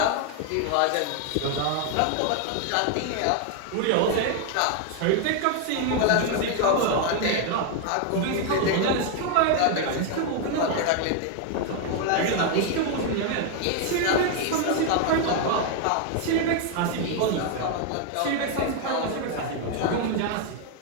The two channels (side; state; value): both; different; correlation 0.01